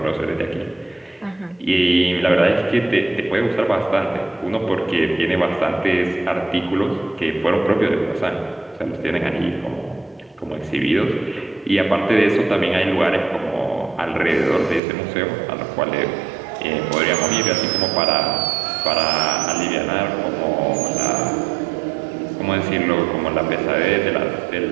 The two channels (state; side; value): drops out; left; at 14.8 s